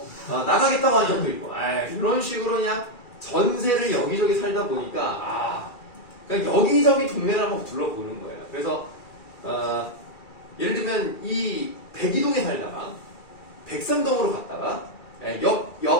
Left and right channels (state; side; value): late; right; 2.3 ms